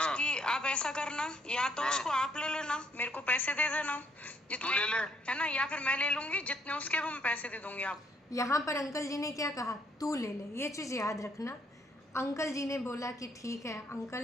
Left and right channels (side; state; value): both; normal; correlation 0.68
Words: उसकी आप ऐसा करना, या तो उसको आप ले लेना, मेरे को पैसे दे देना जितने, तू ले ले। है ना, या फिर मैं ले लूंगी, जितने उसके वो मैं पैसे दे दूंगी। आप यहाँ पर अंकल जी ने क्या कहा? तू ले ले। ये चीज़ याद रखना। अंकल जी ने बोला कि ठीक है।